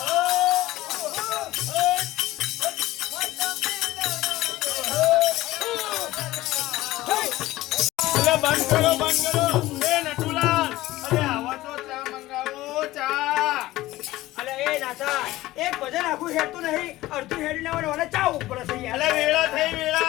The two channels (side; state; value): right; quieter; 17.0 dB